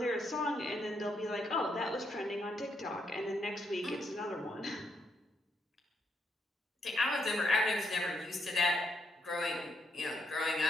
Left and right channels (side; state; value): both; normal; correlation 0.78